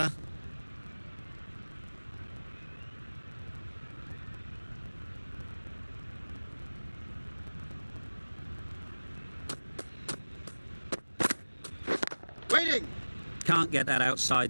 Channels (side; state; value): both; inverted; correlation -1.00